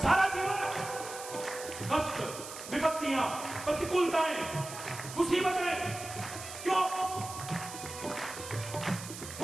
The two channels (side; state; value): right; noise; hiss, 11 dB below the sound